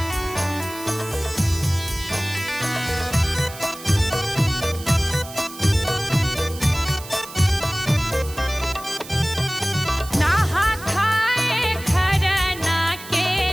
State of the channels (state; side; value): noise; right; hiss, 15 dB below the sound